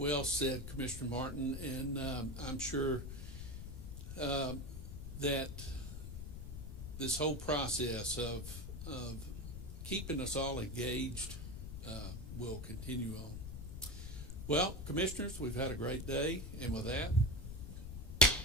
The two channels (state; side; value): noise; left; rumble, 8 dB below the sound